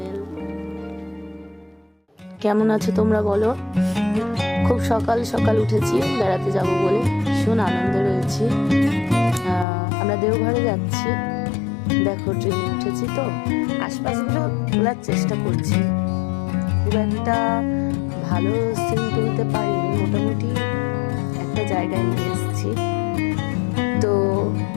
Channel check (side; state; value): right; drops out; at 9.7 s